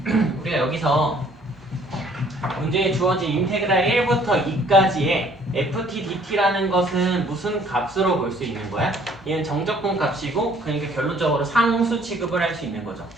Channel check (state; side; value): normal; both; correlation 0.59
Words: 우리가 여기서 문제에 주어진 인테그랄 1부터 2까지의 ft dt라는 것은 무슨 값으로 볼 수 있는 거야? 얘는 정적분 값이고, 그러니까 결론적으로 상수 취급을 할 수 있는 거죠.